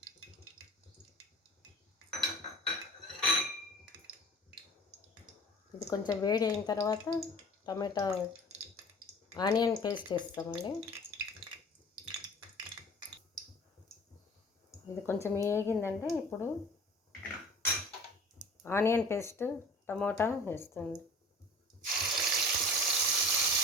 ఇది కొంచెం వేడి అయిన తర్వాత టమాటా ఆనియన్ పేస్ట్ వేస్తామండి. ఇది కొంచెం వేగిందంటే ఇప్పుడు ఆనియన్ పేస్ట్ టమోటా వేస్తుంది.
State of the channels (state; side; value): normal; both; correlation 0.43